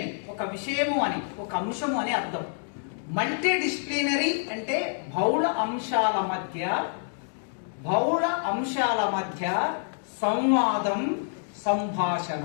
ఒక విషయము అని, ఒక అంశము అని అర్థం. మల్టీ డిసిప్లినరీ అంటే బహుళ అంశాల మధ్య సంవాదం,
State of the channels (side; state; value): right; silent; digital silence